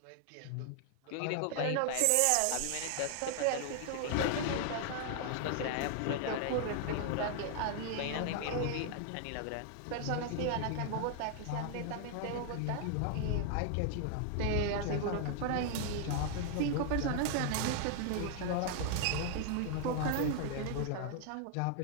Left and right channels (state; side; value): different; both; correlation 0.00